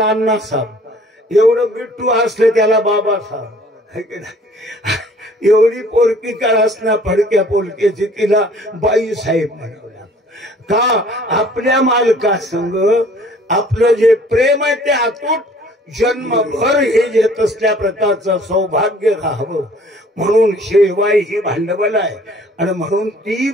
अण्णा साहेब, एवढं बिट्टू असले त्याला बाबा साहेब, एवढी पोरकी का असणार फडक्या पोलकीची तिला बाई साहेब म्हणावं लागतं. का? आपल्या मालकासंग आपलं जे प्रेम आहे ते अतूट जन्मभर हे घेत असल्या प्रकारचं सौभाग्य राहावं म्हणून शेवाई ही भांडवल आहे. आणि म्हणून ती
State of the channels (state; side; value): normal; both; correlation 0.54